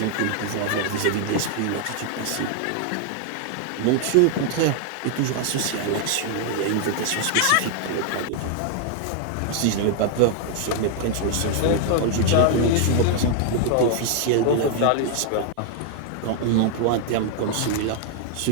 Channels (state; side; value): different; both; correlation 0.00